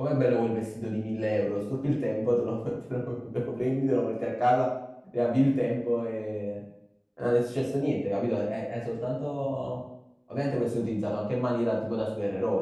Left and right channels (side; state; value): both; identical; correlation 1.00